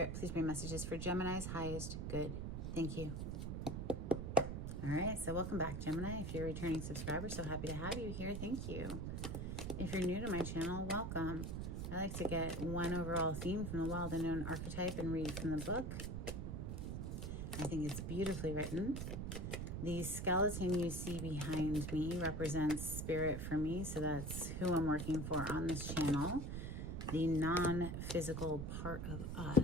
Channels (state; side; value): noise; right; rumble, 3 dB below the sound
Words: please bring messages for Gemini's highest good. Thank you. All right, so welcome back Gemini. If you're a returning subscriber, so happy to have you here. Thank you. If you're new to my channel, welcome. I like to get one overall theme from the Wild Unknown archetype and read from the book. I think it's beautifully written. The skeleton you see behind me represents spirit for me, so that's who I'm working for on this channel. The non-physical part of